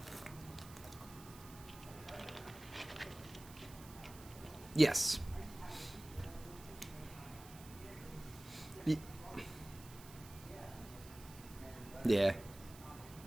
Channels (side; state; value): right; noise; hiss, 17 dB below the sound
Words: Yes. Y- Yeah.